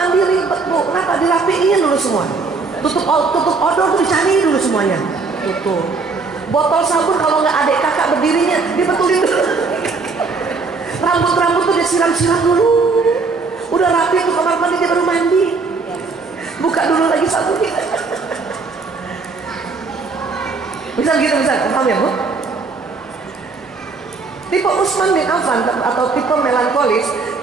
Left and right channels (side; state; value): left; quieter; 4.3 dB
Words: ribet Bu, kenapa? Dirapiin dulu semua. Tutup odol tuh dicari dulu semuanya. Tutup. Botol sabun kalau nggak adik kakak berdirinya, dibetulin dulu. Rambut tuh disiram-siram dulu. Udah rapi tuh kamar mandi, dia baru mandi. Buka dulu lagi sabunnya. Bisa gitu, bisa. Paham ya Bu? Tipe Utsman bin Affan atau tipe melankolis